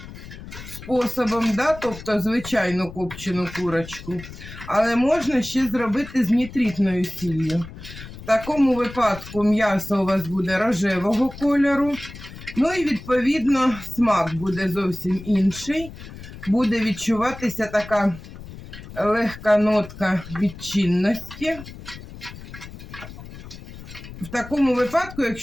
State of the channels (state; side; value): noise; left; rumble, 14 dB below the sound